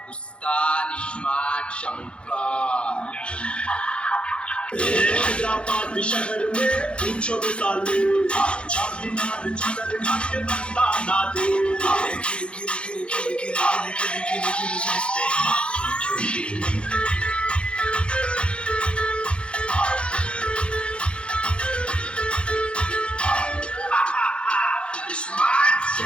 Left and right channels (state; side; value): late; right; 0.058 ms